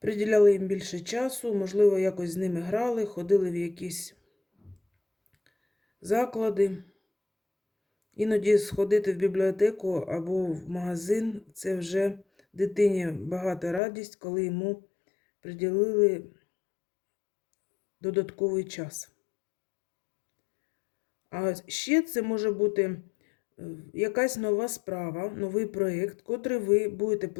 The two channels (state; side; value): drops out; right; at 13.8 s